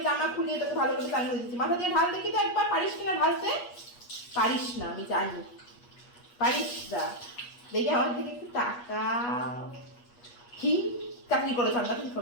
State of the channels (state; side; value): late; right; 8.3 ms